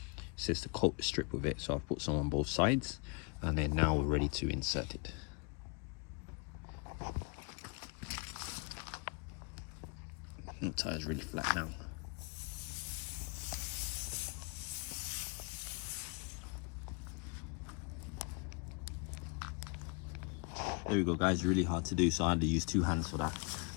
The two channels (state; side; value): quieter; right; 33.8 dB